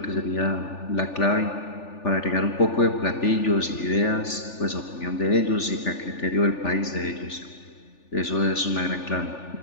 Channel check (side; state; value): right; late; 3.4 ms